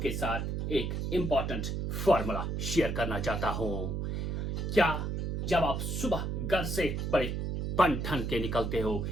साथ एक इम्पॉर्टेंट फॉर्मूला शेयर करना चाहता हूं। क्या जब आप सुबह घर से बड़े बन ठन के निकलते हो,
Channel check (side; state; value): right; noise; hum, 2 dB below the sound